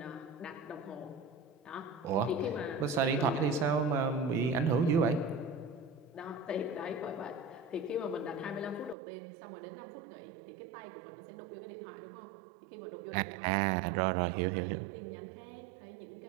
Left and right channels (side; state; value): left; drops out; at 9.0 s